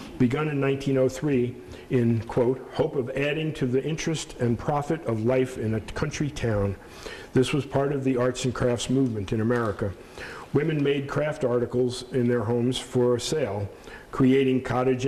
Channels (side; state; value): both; identical; correlation 1.00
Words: begun in 1903 in, quote, hope of adding to the interest and profit of life in a country town. This was part of the arts and crafts movement in America. Women made craft articles in their homes for sale, creating cottage